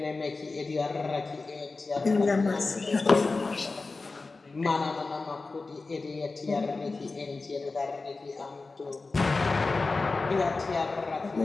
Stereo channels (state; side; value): quieter; right; 3.8 dB